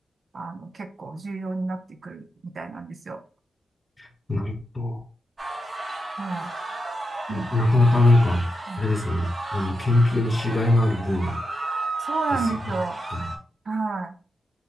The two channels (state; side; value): normal; both; correlation 0.86